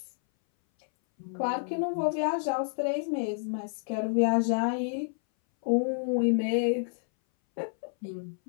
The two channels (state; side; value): silent; right; 58 dB below the other